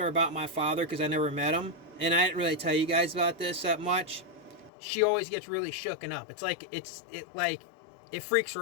about my father, because I never met him, and I didn't really tell you guys about this that much, she always gets really shooken up. It's like it freaks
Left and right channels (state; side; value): drops out; right; at 4.7 s